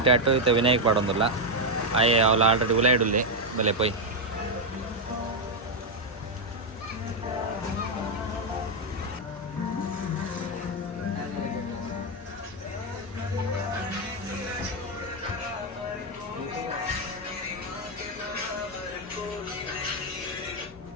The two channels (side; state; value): both; normal; correlation 0.02